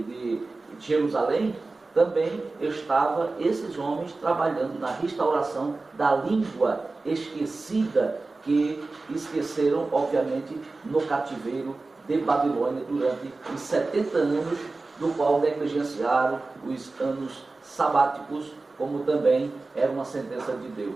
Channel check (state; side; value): quieter; left; 3.5 dB